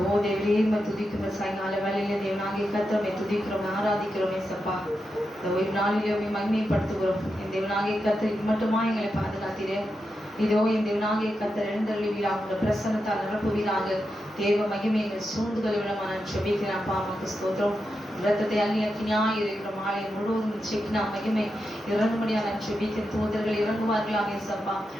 தேவரே துதிக்கிறோம். சாயங்கால வேலையில தேவனாகிய கர்த்தரை துதிக்கிறோம், ஆராதிக்கிறோம். ஏசப்பா, இந்த ஓய்வு நாளிலே மகிமைப்படுத்துகிறோம். என் தேவனாகிய கர்த்தர் மட்டுமா எங்களை பாதுகாத்தீரே. இதோ என் தேவனாகிய கர்த்தர் எழுந்தருளுவீராக, உங்கள் பிரசன்னத்தால் நிரப்புவீராக. தேவ மகிமை எங்கள் சூழ்ந்துகளை விடமா நான் ஜெபிக்கிறேன். அப்பா அம்மாக்கு ஸ்தோத்திரம். இரத்தத்தை அள்ளி அக்கினியாய் இருக்கிற மாலை முழுவதும் செக்கினா மகிமை இறங்கும்படியா நான் ஜெபிக்கிறேன். தூதர்கள் இறங்குவார்களாக. ஏசப்பா,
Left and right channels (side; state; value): both; normal; correlation 0.87